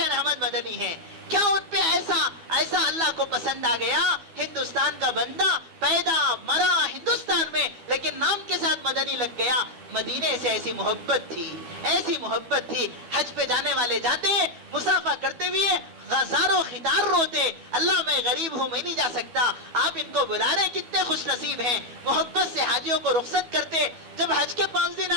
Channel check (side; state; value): left; late; 12 ms